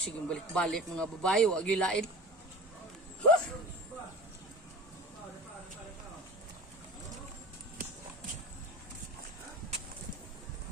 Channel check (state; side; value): normal; both; correlation 0.35